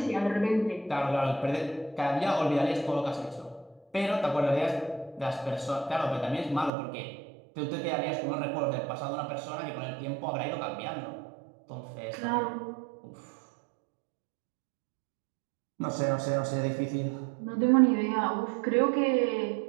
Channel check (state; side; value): drops out; left; at 6.7 s